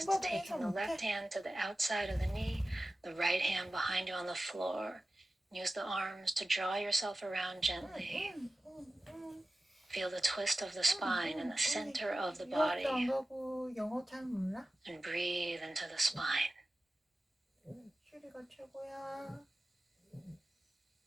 taking the left hand to the outside of the knee, the right hand behind you on the floor. Use the arms to draw yourself around gently. Feel the twist of the spine in the center of the body. 영어 잘 몰라? And breathe into the spine. 슈리가 최고야.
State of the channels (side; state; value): both; normal; correlation 0.95